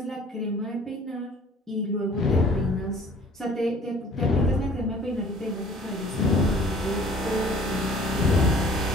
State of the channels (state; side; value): normal; both; correlation 0.51